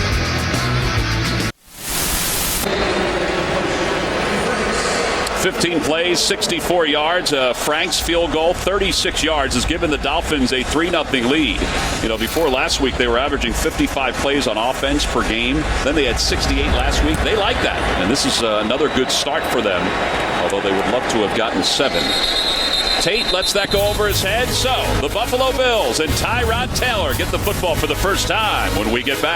15 plays, 64 yards. Frank's field goal, 36 yards, has given the Dolphins a 3-0 lead. You know, before last week, they were averaging 55 plays on offense per game. Then they had 68 last week. They like that. And this is another good start for them, although they would love to have gotten 7. Tate lets that go over his head. So the Buffalo Bills and Tyrod Taylor get the football for the first time when we get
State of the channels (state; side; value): identical; both; correlation 1.00